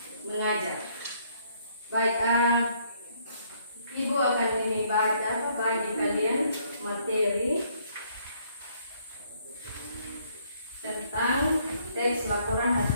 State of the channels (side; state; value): both; inverted; correlation -0.67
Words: mengajar. Baik, ibu akan ini baca bagi kalian materi tentang teks laporan